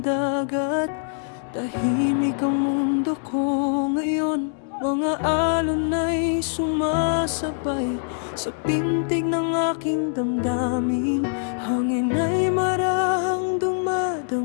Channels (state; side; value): silent; right; digital silence